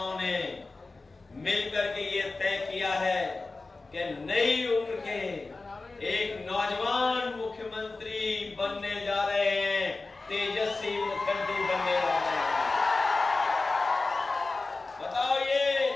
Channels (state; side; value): quieter; right; 3.6 dB